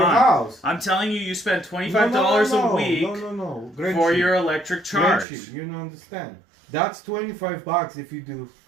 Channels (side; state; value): left; drops out; at 5.2 s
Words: on. house. I'm telling you, you spend $25 a week No. for your electric charge. Gretchen, you don't understand. That's $25 if you do